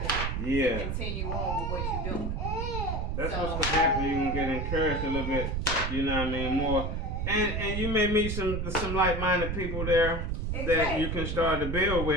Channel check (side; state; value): right; noise; rumble, 2 dB below the sound